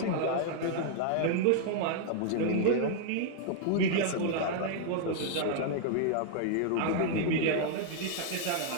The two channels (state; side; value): different; both; correlation -0.01